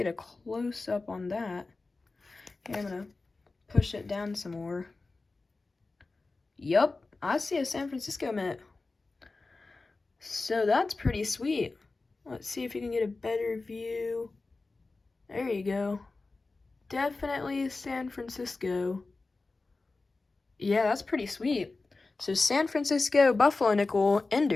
a close-up on that. Here, I'm gonna push it down some more. Yup, I see a San Francisco Mint. So that's pretty sweet. Let's see if you can get a better view. There you go. Definitely San Francisco. Yeah, that's pretty sweet. So San Francisco Buffalo nickel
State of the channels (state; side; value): quieter; right; 3.6 dB